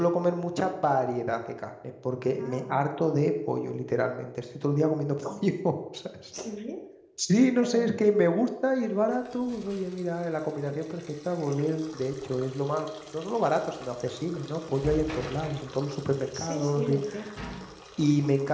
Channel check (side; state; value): both; identical; correlation 1.00